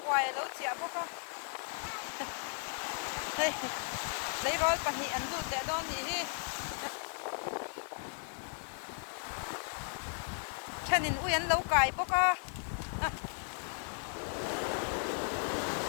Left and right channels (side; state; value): right; silent; 54 dB below the other